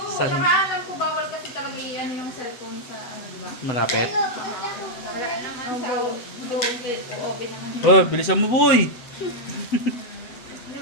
Saan? Saka alam ko bawal kasi talaga ano yung cellphone sa ano, di ba? Malapit. Wala naman sa open naman. Oh, bilisan mo boy!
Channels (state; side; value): late; right; 7.8 ms